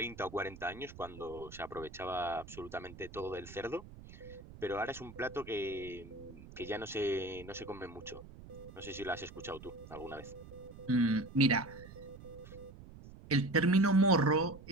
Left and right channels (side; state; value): right; noise; rumble, 16 dB below the sound